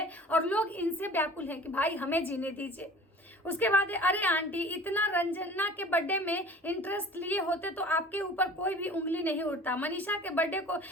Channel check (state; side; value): normal; both; correlation 0.44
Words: और लोग इनसे व्याकुल हैं कि भाई हमें जीने दीजिए। उसके बाद अरे आंटी इतना रंजना के बर्थडे में इंटरेस्ट लिए होते तो आपके ऊपर कोई भी उंगली नहीं उठता। मनीषा के बर्थडे को